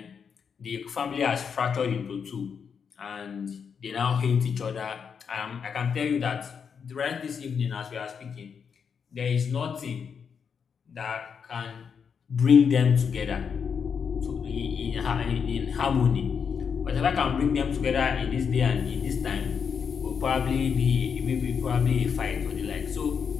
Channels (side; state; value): right; quieter; 6.6 dB